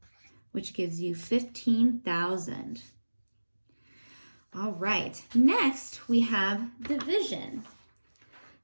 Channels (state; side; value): inverted; both; correlation -1.00